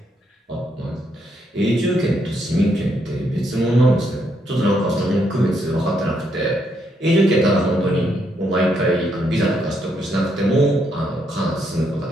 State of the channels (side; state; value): both; normal; correlation 0.76